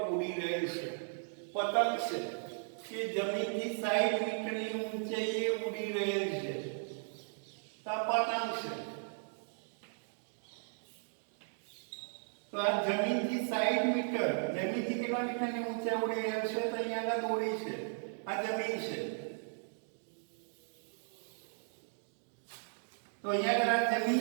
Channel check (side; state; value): left; silent; digital silence